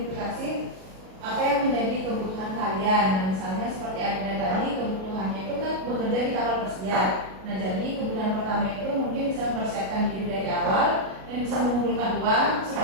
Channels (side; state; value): left; late; 37 ms